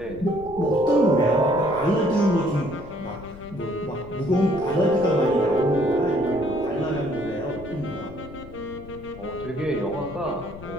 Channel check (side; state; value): left; noise; rumble, 16 dB below the sound